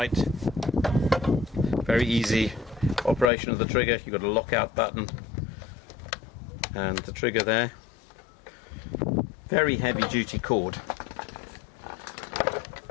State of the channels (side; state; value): right; drops out; at 3.3 s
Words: Very easy operation of the trigger. You've got a lockout button and the trigger there. Very heavy duty cord,